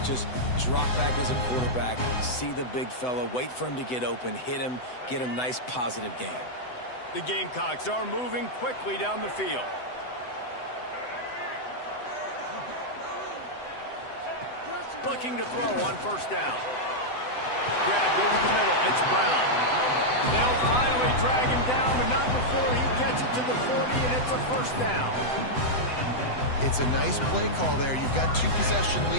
Just drop back as a quarterback, see the big fella, wait for him to get open, hit him, get a nice positive gain. The Gamecocks are moving quickly down the field. Looking to throw on 1st down. Grabbed over the middle. It's Brown. They'll finally drag him down, but not before he gets it to the 40, and it's a 1st down. It's a nice play call there. You've got 2-possession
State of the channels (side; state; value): right; late; 7.9 ms